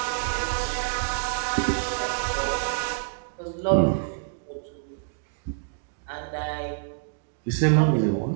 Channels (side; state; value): left; silent; digital silence